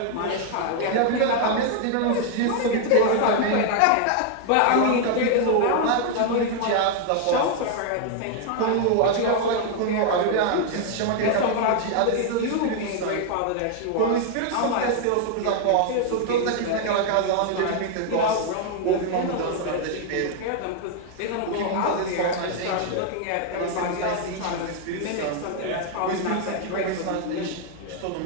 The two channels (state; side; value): different; both; correlation 0.00